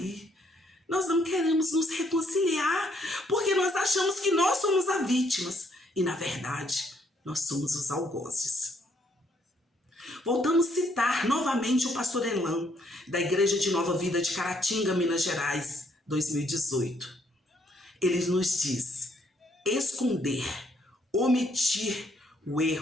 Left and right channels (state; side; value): normal; both; correlation 0.69